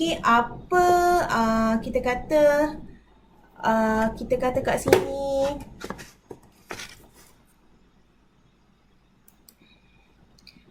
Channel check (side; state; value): both; identical; correlation 1.00